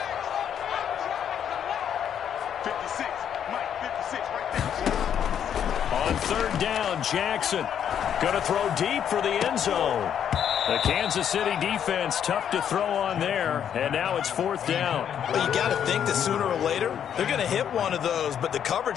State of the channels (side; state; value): right; quieter; 9.0 dB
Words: On 3rd down, Jackson going to throw deep for the end zone. The Kansas City defense tough to throw on there, and now it's 4th down. Well, you got to think that sooner or later they're going to hit one of those, but the